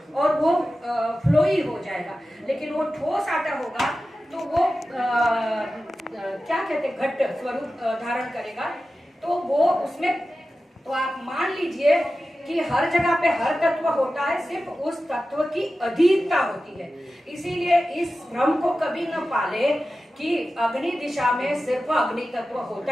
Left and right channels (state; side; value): normal; both; correlation 0.94